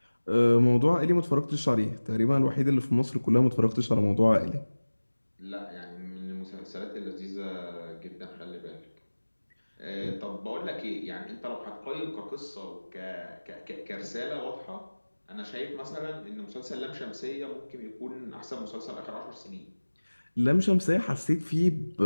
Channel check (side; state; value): both; inverted; correlation -1.00